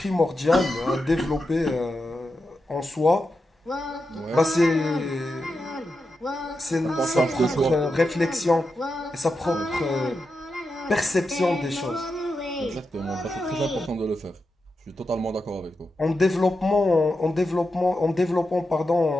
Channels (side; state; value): both; normal; correlation 0.88